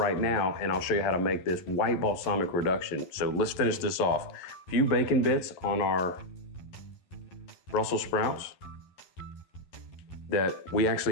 now and I'll show you how to make this white balsamic reduction. So let's finish this off. A few bacon bits on our Brussels sprouts that we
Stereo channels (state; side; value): late; right; 11 ms